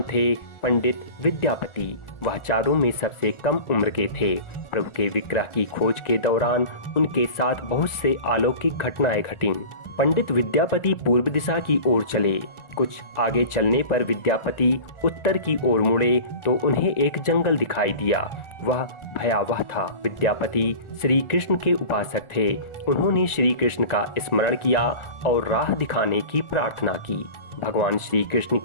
थे पंडित विद्यापति। वह चारों में सबसे कम उम्र के थे। प्रभु के विग्रह की खोज के दौरान उनके साथ बहुत से अलौकिक घटनाएं घटीं। पंडित विद्यापति पूर्व दिशा की ओर चले। कुछ आगे चलने पर विद्यापति उत्तर की ओर मुड़े तो उन्हें एक जंगल दिखाई दिया। वह भयावह था। विद्यापति श्री कृष्ण के उपासक थे। उन्होंने श्री कृष्ण का स्मरण किया और राह दिखाने की प्रार्थना की। भगवान श्री कृष्ण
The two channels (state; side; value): late; right; 1.4 ms